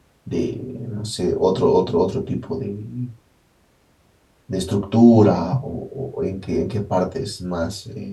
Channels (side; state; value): both; identical; correlation 1.00